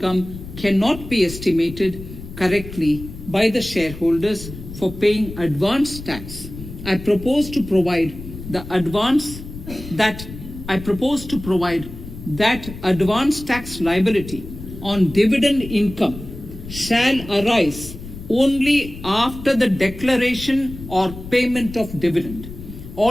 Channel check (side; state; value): left; noise; rumble, 12 dB below the sound